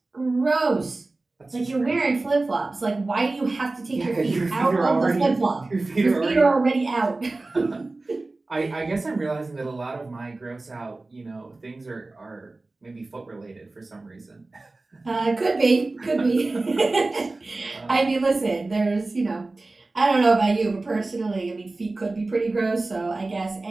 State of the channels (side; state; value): left; quieter; 3.2 dB